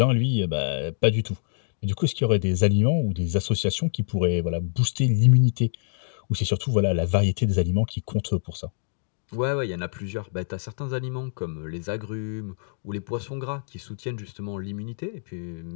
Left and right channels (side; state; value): right; silent; digital silence